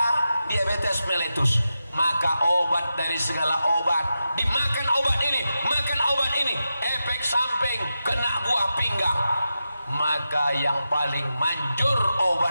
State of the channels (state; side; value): inverted; both; correlation -0.90